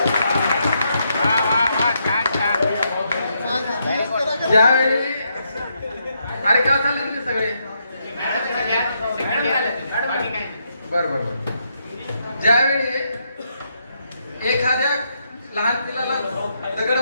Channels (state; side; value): inverted; both; correlation -0.79